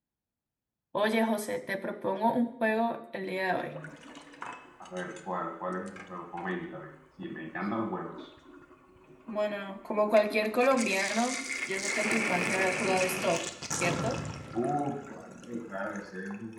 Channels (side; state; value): both; identical; correlation 1.00